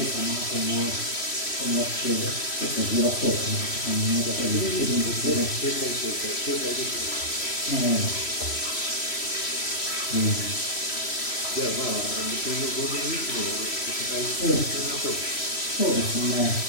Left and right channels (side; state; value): right; late; 3.0 ms